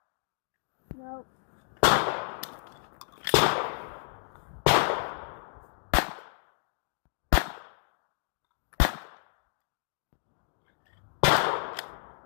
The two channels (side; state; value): right; silent; digital silence